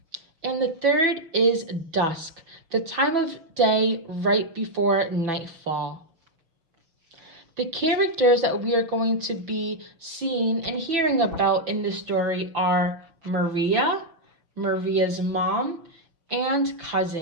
And the third is dusk, the time of day right before nightfall. The characters that we are going to be seeing and hearing about in this story are Maria, Maria's mom, and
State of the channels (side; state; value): left; late; 6.1 ms